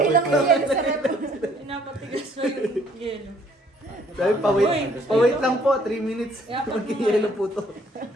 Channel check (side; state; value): both; normal; correlation 0.62